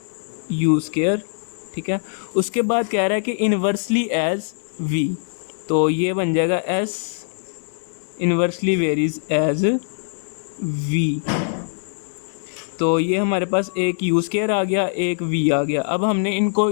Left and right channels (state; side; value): silent; right; digital silence